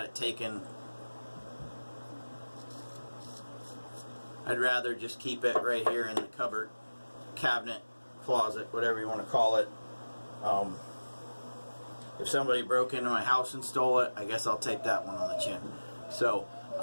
taken. I'd rather just keep it right here in the cupboard, cabinet, closet, whatever you want to call it. If somebody broke into my house and stole it, I guess I'll take that one on the chin. So,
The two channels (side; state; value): both; inverted; correlation -1.00